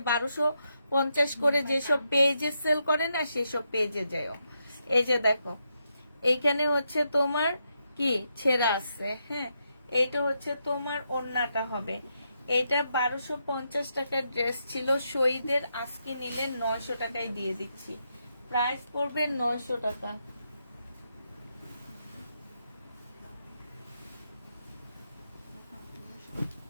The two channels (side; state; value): both; inverted; correlation -0.82